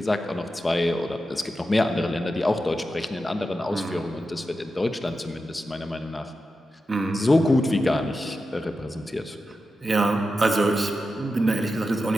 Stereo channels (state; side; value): normal; both; correlation 0.90